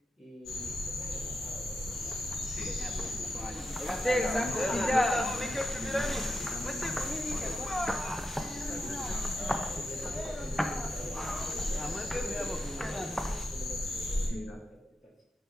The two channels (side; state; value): both; normal; correlation 0.87